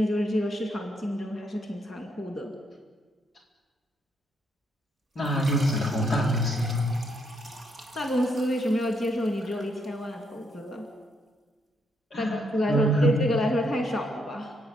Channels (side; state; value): both; normal; correlation 0.75